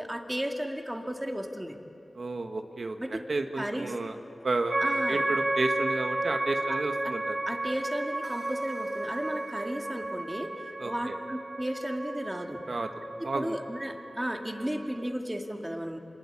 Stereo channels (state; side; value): normal; both; correlation 0.98